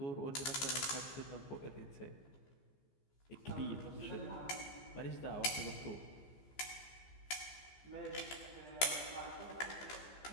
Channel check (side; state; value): right; late; 15 ms